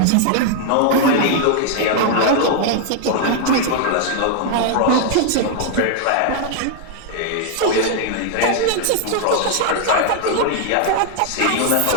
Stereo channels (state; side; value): different; both; correlation 0.00